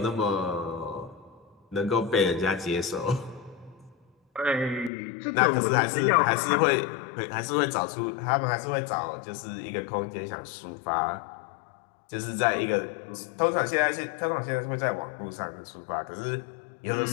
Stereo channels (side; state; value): right; drops out; at 4.9 s